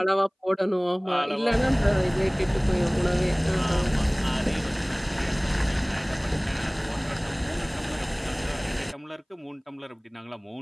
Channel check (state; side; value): identical; both; correlation 1.00